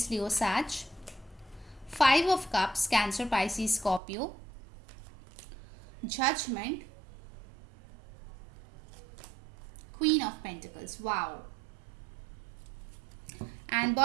Leo, Sag. 5 of Cups, Cancer, Pisces, Scorpio. Judgment. Queen of Pentacles. Wow. And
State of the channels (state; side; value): drops out; left; at 4.0 s